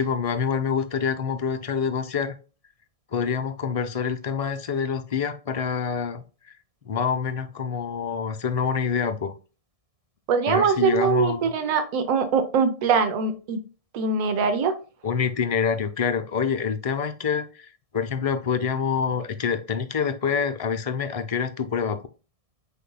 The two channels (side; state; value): left; late; 1.7 ms